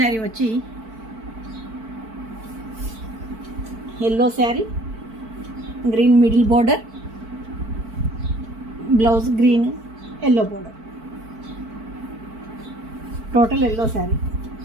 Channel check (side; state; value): left; late; 4.5 ms